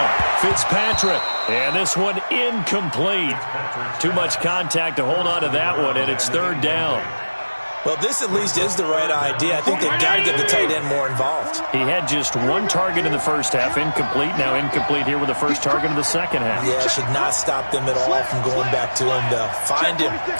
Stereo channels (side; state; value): both; inverted; correlation -1.00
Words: Fitzpatrick. And this one incomplete. Too much contact to hold on to that one, and it's 3rd down. Well, this at least is the right idea. I think they've got to get the tight end more involved. He had just 1 target in the first half, incomplete. Now incomplete here with the first target of the second half. Yeah, should not stop them at all from going back to him, though. Find him.